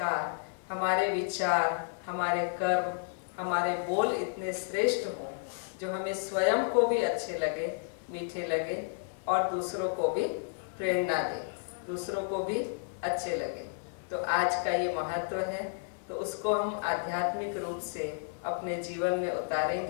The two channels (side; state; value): right; silent; 56 dB below the other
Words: हमारे विचार, हमारे कर्म, हमारे बोल इतने श्रेष्ठ हों जो हमें स्वयं को भी अच्छे लगे, मीठे लगे और दूसरों को भी प्रेरणा दे, दूसरों को भी अच्छे लगे। तो आज का ये महत्व है, तो उसको हम आध्यात्मिक रूप से अपने जीवन में